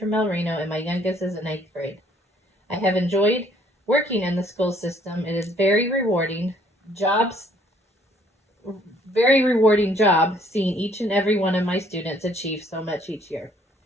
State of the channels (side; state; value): both; normal; correlation 0.62